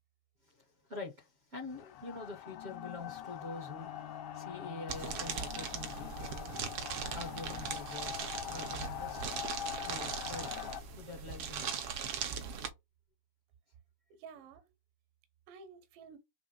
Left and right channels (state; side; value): late; left; 7.3 ms